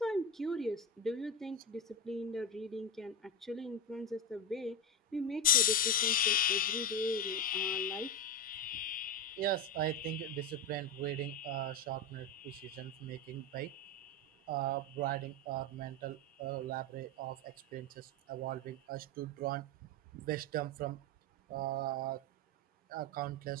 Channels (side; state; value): both; normal; correlation 0.14